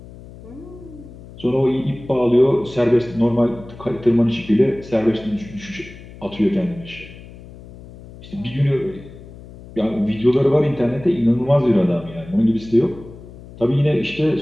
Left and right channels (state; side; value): noise; left; hum, 18 dB below the sound